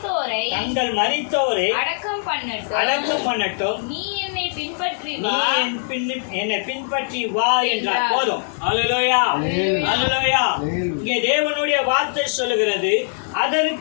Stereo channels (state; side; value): silent; right; 65 dB below the other